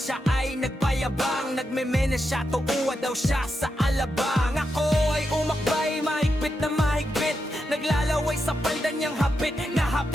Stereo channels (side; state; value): both; normal; correlation 0.86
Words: ay nagpayabang. Nagmemena siya, tuuwa daw siya sa alabang. Ako ay umakbay, mahigpit na mahigpit. Naglalaway sa palda niyang hapit na